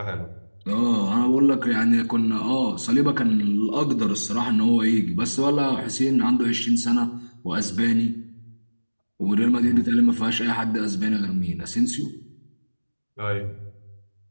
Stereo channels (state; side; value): inverted; both; correlation -1.00